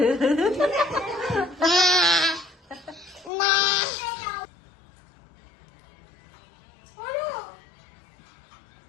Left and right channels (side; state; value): right; drops out; at 3.3 s